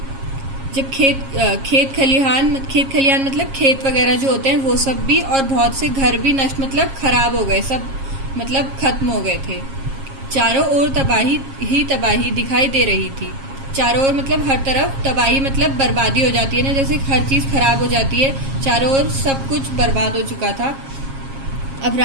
जब खेत खलिहान मतलब खेत वगैरह जो होते हैं वो सब भी, और बहुत से घर भी नष्ट मतलब खराब हो गए, सब मतलब खत्म हो गए थे। चारों ओर तबाही ही तबाही दिखाई दे रही थी। चारों ओर मतलब हर तरफ, तबाही मतलब बर्बादी हो जाती है ना, जैसे हर चीज खराब हो जाती है। चारों ओर सब कुछ बर्बाद हो चुका था। अब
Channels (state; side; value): late; left; 7.4 ms